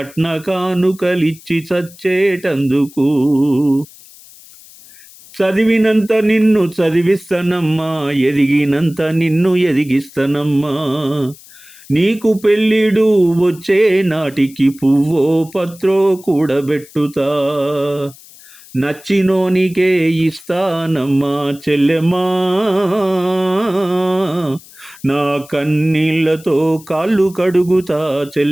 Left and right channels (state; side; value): noise; left; hiss, 22 dB below the sound